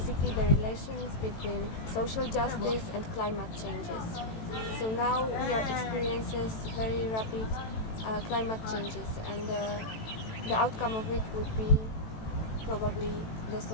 the relations between social justice and climate changes. So now we are experiencing very rapid climate changes, and the outcome of it would be probably the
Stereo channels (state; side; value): late; right; 18 ms